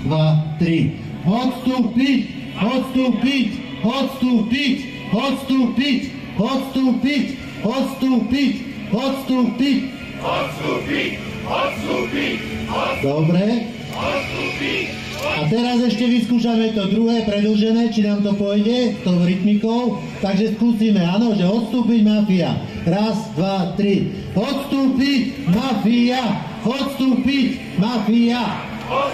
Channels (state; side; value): identical; both; correlation 1.00